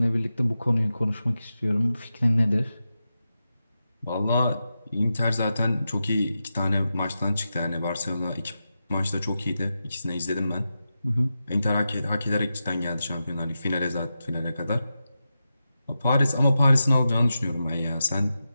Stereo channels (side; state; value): both; inverted; correlation -0.90